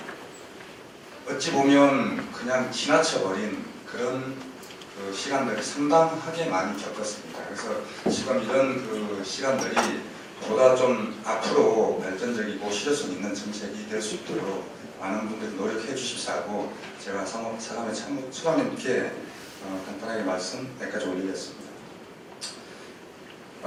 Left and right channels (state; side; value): identical; both; correlation 1.00